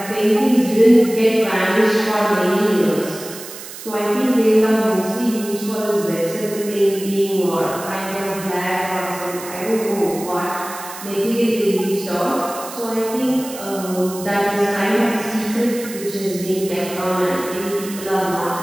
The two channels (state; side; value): noise; right; hiss, 13 dB below the sound